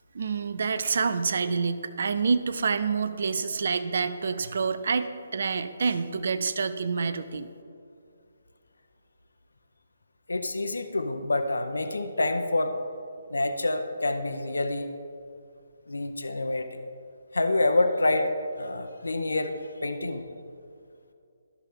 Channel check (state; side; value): inverted; both; correlation -0.86